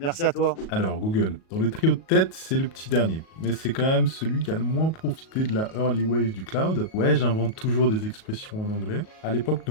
à toi. Alors, Google, dans le trio de tête, c'est le petit dernier. Mais c'est quand même celui qui a le moins profité de la early wave du cloud. Ouais, j'invente toujours des expressions en anglais. À l'époque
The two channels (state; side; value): late; right; 37 ms